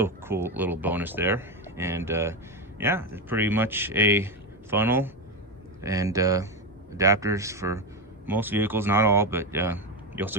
a cool little bonus there. And yeah, it's pretty much a funnel and adapters for most vehicles, not all, but you also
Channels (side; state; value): both; normal; correlation 0.12